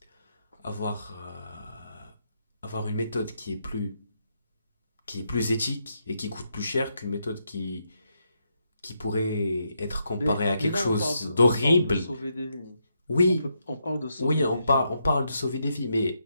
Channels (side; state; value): both; inverted; correlation -0.80